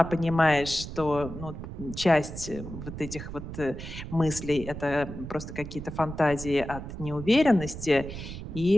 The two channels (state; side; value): noise; right; rumble, 9 dB below the sound